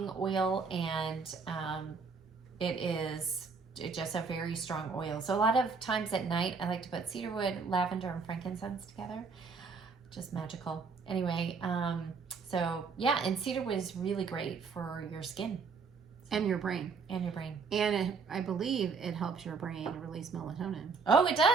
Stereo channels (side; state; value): left; quieter; 4.9 dB